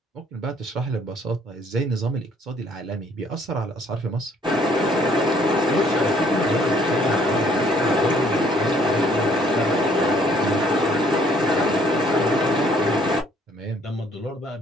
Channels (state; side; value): normal; both; correlation 0.62